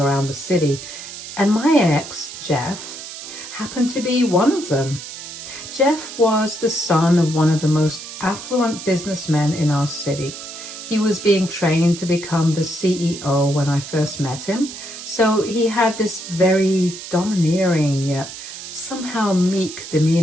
around the city. And my ex, Jeff, happened to be one of them. Jeff was the son of one of the most affluent businessmen in our city. He was being trained to become the CEO when I first met him. So he had this very domineering yet somehow meek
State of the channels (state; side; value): noise; right; hiss, 11 dB below the sound